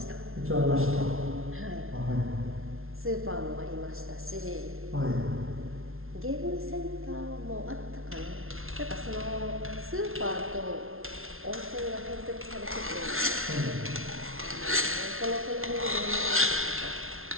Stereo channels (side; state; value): left; late; 0.61 ms